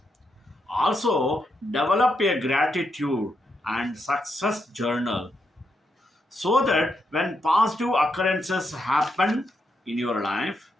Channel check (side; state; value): both; normal; correlation 0.81